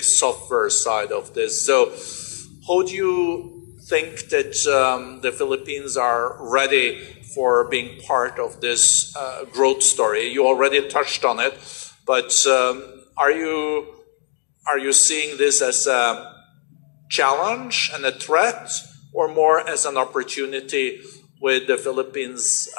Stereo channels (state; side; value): silent; right; digital silence